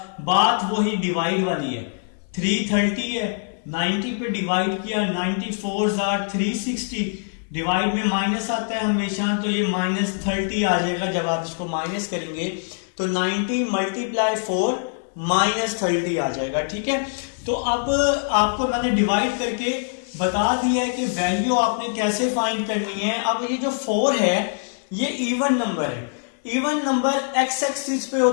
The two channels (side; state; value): right; silent; 63 dB below the other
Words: बात वही डिवाइड वाली है, 330 है, 90 पे डिवाइड किया, 90 4s आर 360, डिवाइड में माइनस आता है हमेशा, तो ये -30 आ जाएगा। जब आप इसको माइनस करेंगे तो 90 मल्टीप्लाई 4 -30 आ जाएगा। ठीक है, तो अब आपको मैंने डिवाइड करके बता दिया है कि वैल्यू आपने कैसे फाइंड करनी है। अब ये जो 4 है ये इवन नंबर है, इवन नंबर एक्स एक्सिस पे